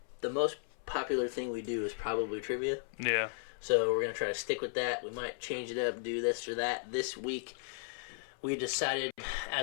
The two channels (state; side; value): silent; right; 54 dB below the other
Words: most popular thing we do is probably trivia. Yeah. So we're going to try to stick with that. We might change it up, do this or that. This week, we decided